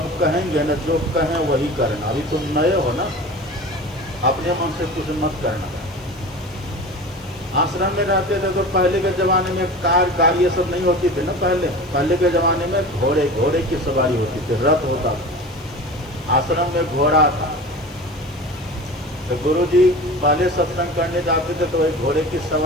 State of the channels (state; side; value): noise; left; hiss, 28 dB below the sound